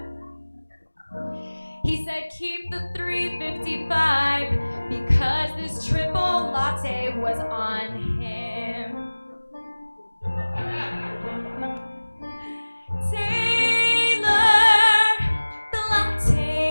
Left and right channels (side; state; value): both; inverted; correlation -1.00